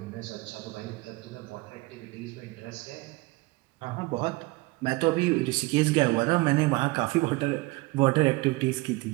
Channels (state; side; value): quieter; left; 23.2 dB